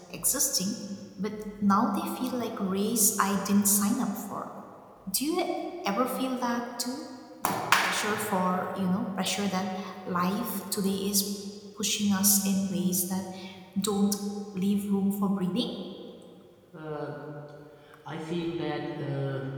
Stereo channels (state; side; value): identical; both; correlation 1.00